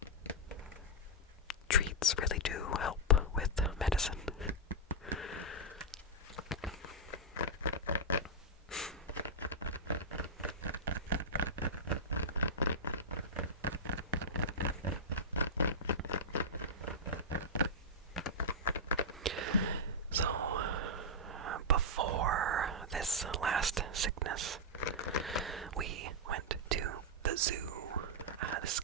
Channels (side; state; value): both; normal; correlation -0.08